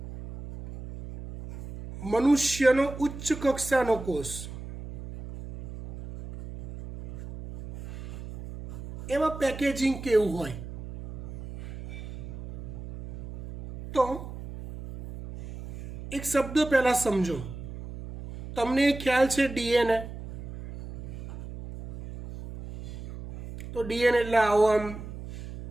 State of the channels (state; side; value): noise; right; hum, 11 dB below the sound